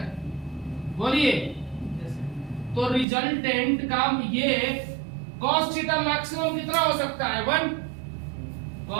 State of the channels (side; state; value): left; drops out; at 3.1 s